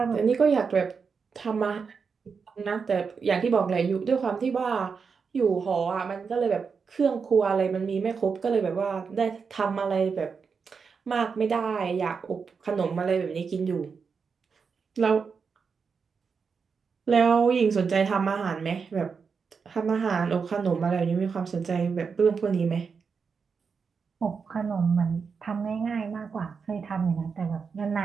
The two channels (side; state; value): left; quieter; 5.6 dB